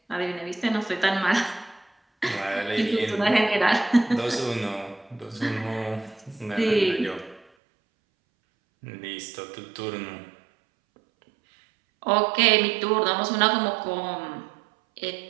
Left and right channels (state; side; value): drops out; left; at 7.5 s